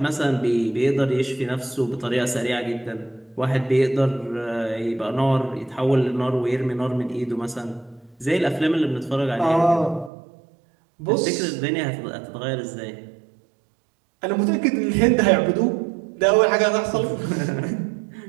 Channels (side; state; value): left; drops out; at 10.1 s